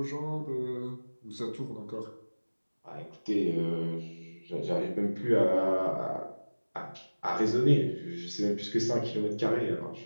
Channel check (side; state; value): both; inverted; correlation -1.00